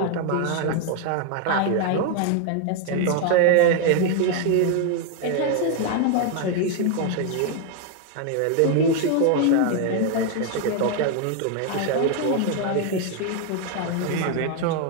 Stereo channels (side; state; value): both; different; correlation 0.01